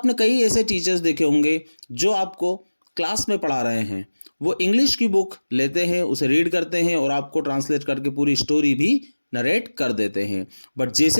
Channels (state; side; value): inverted; both; correlation -1.00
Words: कई ऐसे टीचर्स देखे होंगे जो आपको क्लास में पढ़ा रहे हैं, वो इंग्लिश की बुक लेते हैं, उसे रीड करते हैं और आपको ट्रांसलेट करके पूरी स्टोरी भी नरेट कर देते हैं। बट